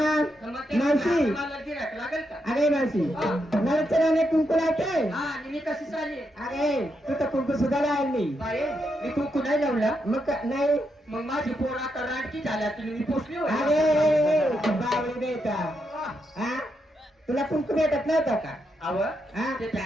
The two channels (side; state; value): both; normal; correlation 0.82